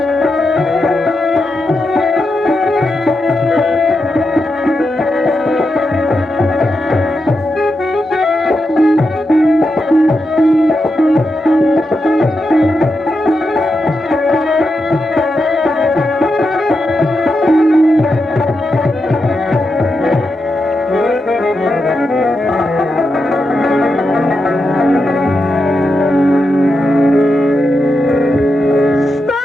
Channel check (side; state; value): both; normal; correlation 0.86